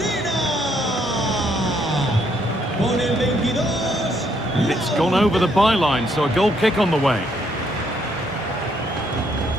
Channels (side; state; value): both; normal; correlation 0.71